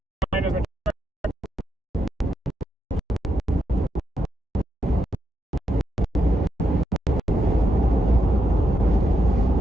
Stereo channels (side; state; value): both; normal; correlation 0.83